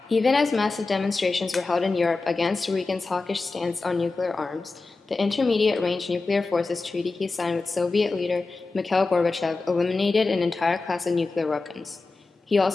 Even as massive demonstrations were held in Europe against Reagan's hawkish stance on nuclear arms, the Intermediate-Range Nuclear Forces Treaty he signed with Soviet leader Mikhail Gorbachev eliminated an entire class of nuclear weapons. He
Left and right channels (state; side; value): quieter; right; 3.7 dB